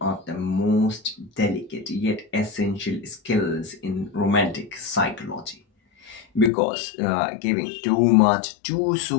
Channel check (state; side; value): drops out; right; at 6.5 s